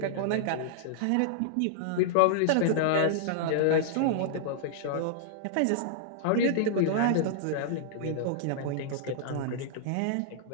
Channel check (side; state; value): both; different; correlation -0.01